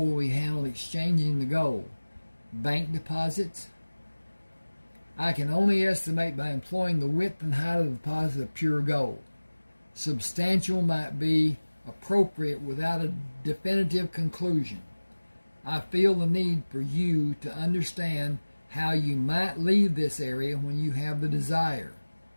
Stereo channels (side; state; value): both; inverted; correlation -1.00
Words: we handle exchanging the gold? Bank deposits? I can only estimate by employing the width and height of the deposit of pure gold. Substantial might be appropriate without a definitive conclusion. I feel the need for you to understand how you might leave this area when you have the desire.